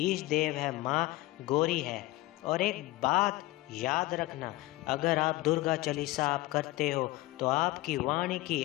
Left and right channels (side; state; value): right; quieter; 19.0 dB